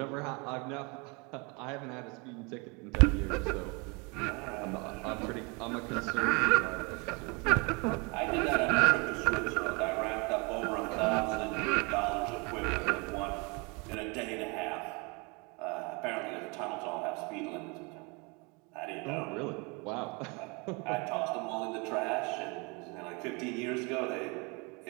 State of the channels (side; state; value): left; quieter; 30.0 dB